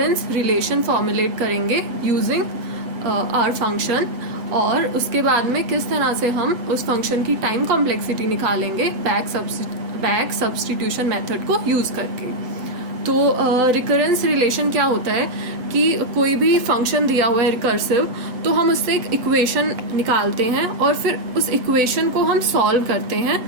रिलेशन फॉर्मुलेट करेंगे यूजिंग आवर फंक्शन, और उसके बाद में किस तरह से हम उस फंक्शन की टाइम कॉम्प्लेक्सिटी निकालेंगे बैक सब्स्टिट्यूशन मेथड को यूज करके। तो रिकरेंस रिलेशन क्या होता है कि कोई भी फंक्शन दिया हुआ है रिकर्सिव, तो हम उससे एक इक्वेशन निकालते हैं और फिर उस इक्वेशन को हम सॉल्व करते हैं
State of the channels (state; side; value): late; left; 7.9 ms